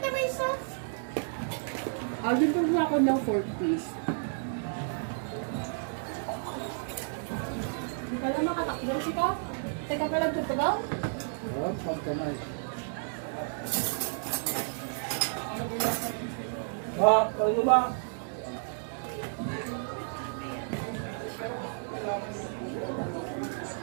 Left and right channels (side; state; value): left; silent; digital silence